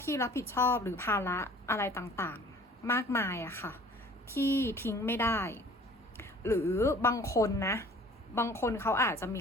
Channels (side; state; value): both; normal; correlation 0.49